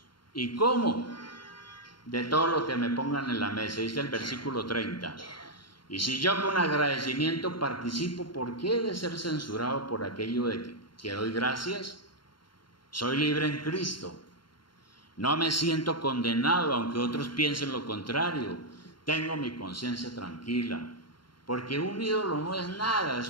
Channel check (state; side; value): late; right; 0.72 ms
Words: ¿Y cómo? De todo lo que me pongan en la mesa, dice el versículo 30. Y si yo con agradecimiento participo, ¿por qué he de ser censurado por aquello de que doy gracias? Soy libre en Cristo. No me siento condenado, aunque otros piensen lo contrario. Tengo mi conciencia tranquila, porque un ídolo no es nada,